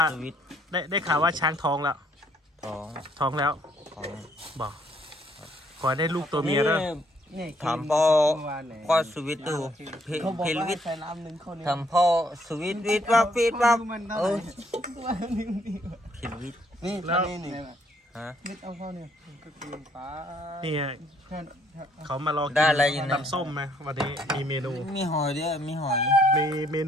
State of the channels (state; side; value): normal; both; correlation 0.67